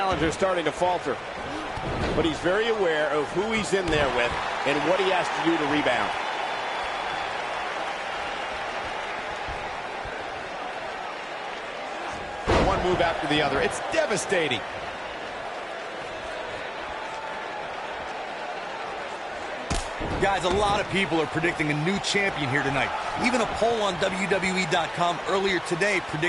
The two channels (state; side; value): identical; both; correlation 1.00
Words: starting to falter, but he's very aware of who he's in there with and what he has to do to rebound. Move after the other. It's devastating. Guys, a lot of people are predicting a new champion here tonight. Even a poll on WWE.com earlier today